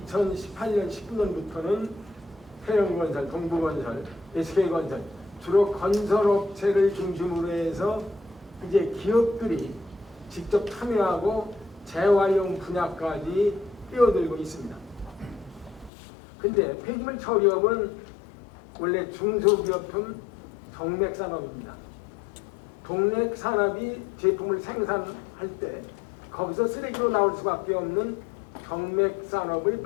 19년부터는 태영건설, 동부건설, SK건설 주로 건설업체를 중심으로 해서 이제 기업들이 직접 참여하고 재활용 분야까지 뛰어들고 있습니다. 근데 폐기물 처리업은 원래 중소기업품 정맥산업입니다. 동맥산업이 제품을 생산할 때 거기서 쓰레기로 나올 수밖에 없는 정맥산업을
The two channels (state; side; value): drops out; right; at 15.9 s